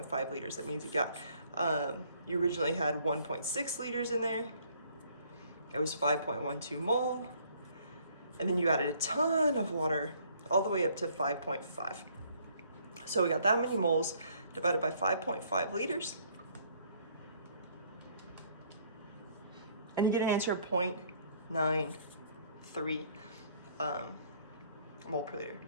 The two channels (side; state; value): both; inverted; correlation -0.62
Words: liters. That means you got, you originally had 1.6 liters in there. It was 5.12 mole. And then you added a ton of water all the way up to 5.5. So we got that many moles divided by 5.5 liters. And you get an answer of 0.93 mole per liter.